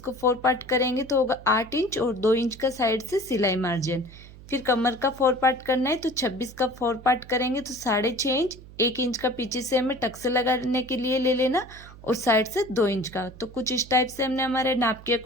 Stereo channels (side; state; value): right; noise; hum, 19 dB below the sound